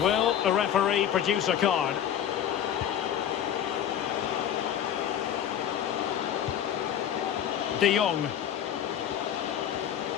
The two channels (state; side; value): quieter; right; 9.9 dB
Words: will the referee produce a card? De Jong.